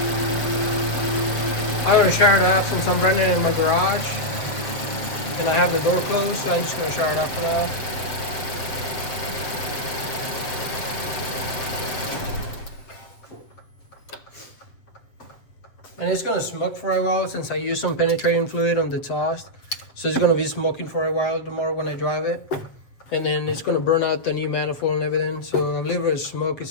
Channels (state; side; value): late; right; 7.7 ms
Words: I'm going to shower it up since I'm running in my garage and I have the door closed, so I'm just going to shower it up for now. And it's going to smoke for a while since I used some penetrating fluid on the exhaust. So it's going to be smoking for a while tomorrow when I drive it. And then it's going to burn out the new manifold and everything. So I believe it's smoke